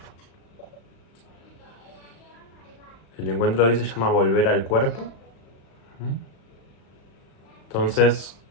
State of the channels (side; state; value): right; late; 36 ms